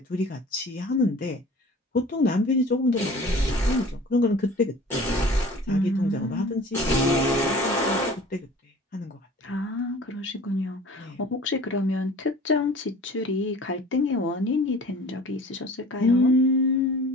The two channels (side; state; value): both; normal; correlation 0.44